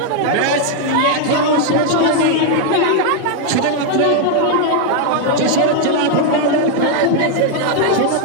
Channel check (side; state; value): both; different; correlation 0.00